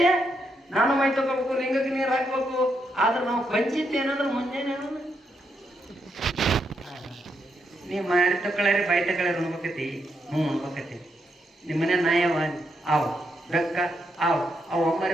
ನಾನು ಮೈ ತಗೋಬೇಕು ಲಿಂಗಕ್ಕೆ ನೀರು ಹಾಕ್ಬೇಕು. ಆದ್ರೆ ನಾವು ಪಂಚಿತ್ ಏನಂದ್ರೆ ಮುಂಜಾನೆ ನೀವು ಮಾಡಿ ತಗೊಳ್ಳಿ ಬೈ ತಗೊಳ್ಳಿ ಉಣ್ಬೇಕತಿ. ಉಣ್ಬೇಕತಿ ನಿಮ್ಮ ಮನೆ ನಾಯವ ಅವು ಬೆಕ್ಕ ಅವು ಅಮ್ಮರಿ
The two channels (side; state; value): both; normal; correlation 0.80